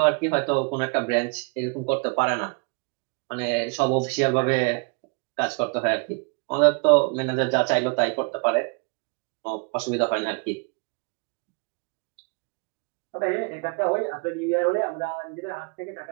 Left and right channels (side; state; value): left; quieter; 34.3 dB